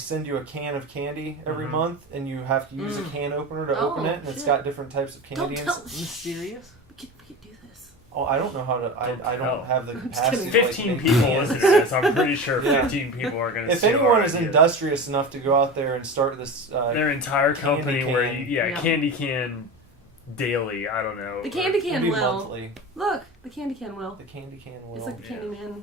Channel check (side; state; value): both; normal; correlation 0.27